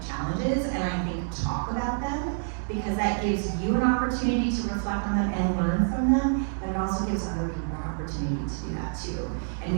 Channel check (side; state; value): left; silent; digital silence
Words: challenges and I think talk about them because that gives you an opportunity to reflect on them and learn from them, but it also gives other people an opportunity to do that too. And